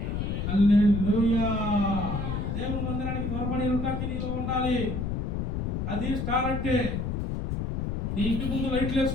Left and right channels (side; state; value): left; noise; rumble, 2 dB below the sound